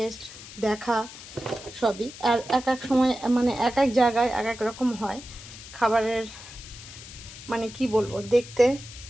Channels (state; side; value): noise; left; hiss, 15 dB below the sound